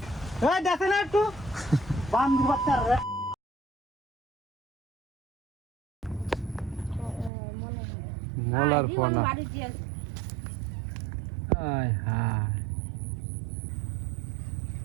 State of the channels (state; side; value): drops out; left; at 7.3 s